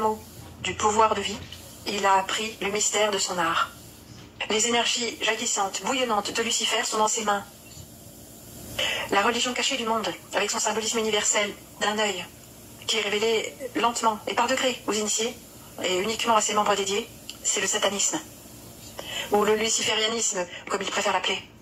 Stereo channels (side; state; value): both; identical; correlation 1.00